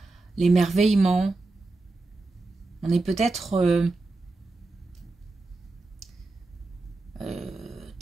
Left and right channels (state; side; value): quieter; left; 3.3 dB